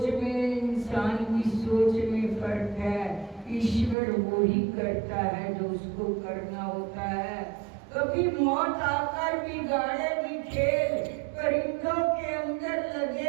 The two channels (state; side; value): drops out; left; at 4.0 s